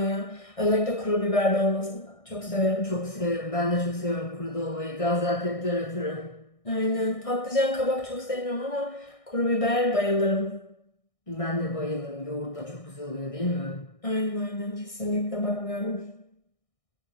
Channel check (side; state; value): right; late; 1.6 ms